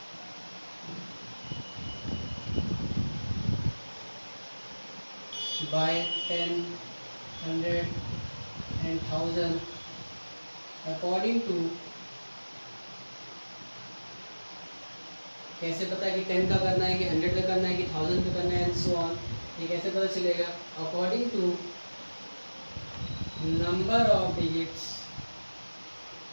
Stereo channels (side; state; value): both; inverted; correlation -1.00